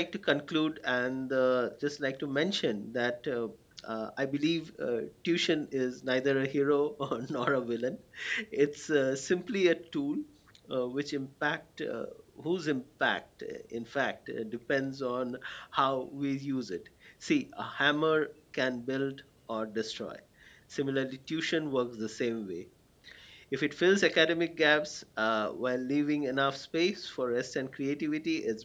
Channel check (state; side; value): identical; both; correlation 1.00